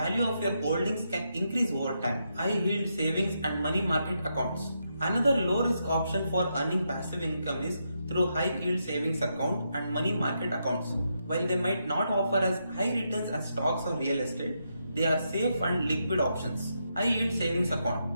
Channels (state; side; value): inverted; both; correlation -0.82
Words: of your holdings can increase over time. High yield savings and money market accounts. Another low risk option for earning passive income is through high yield savings account and money market accounts. While they might not offer as high returns as stocks or real estate, they are safe and liquid options. High yield savings